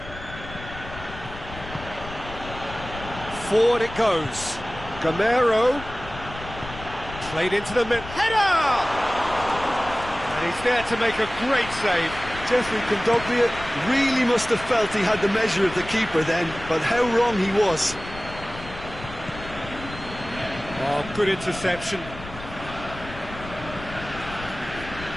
Forward it goes. Gameiro. Played into the mid. Header! And he's there to make a great save. Geoffrey Kondogbia really must have felt he had the measure of the keeper then, but how wrong he was. Oh, good interception.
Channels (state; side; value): noise; left; rumble, 13 dB below the sound